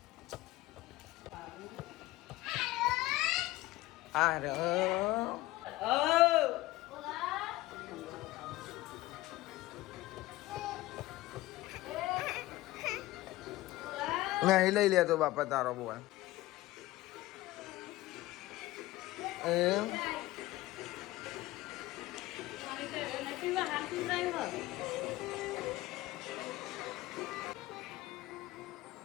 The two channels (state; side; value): quieter; right; 17.9 dB